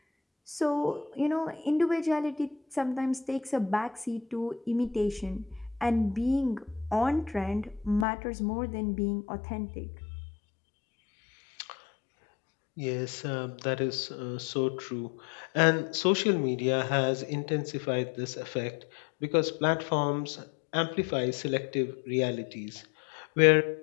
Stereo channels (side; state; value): right; drops out; at 8.1 s